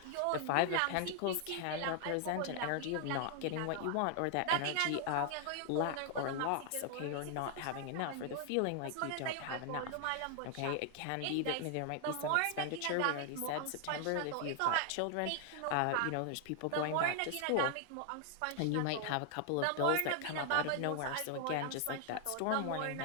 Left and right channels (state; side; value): different; both; correlation 0.00